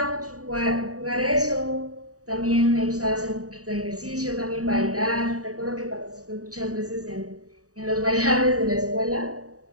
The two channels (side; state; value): left; late; 0.66 ms